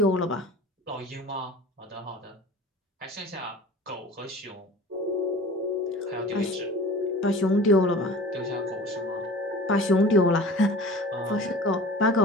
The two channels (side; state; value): both; normal; correlation 0.40